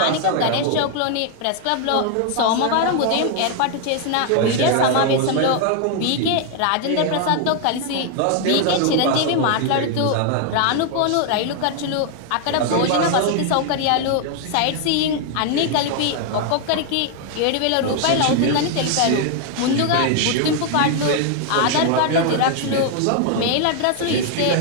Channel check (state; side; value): different; both; correlation 0.00